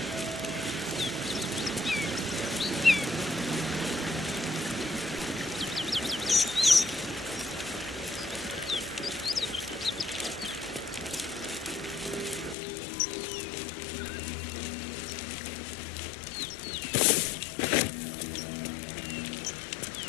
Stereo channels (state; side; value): drops out; right; at 12.6 s